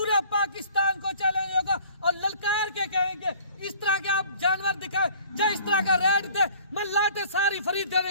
पाकिस्तान को चैलेंज होगा और ललकार के कहेंगे इस तरह के आप जानवर दिखाए, जो इस तरह का रेट दे, मैं लाटे सारी खरीद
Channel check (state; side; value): inverted; both; correlation -0.51